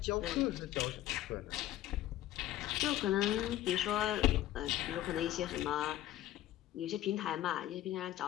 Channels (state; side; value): quieter; right; 13.9 dB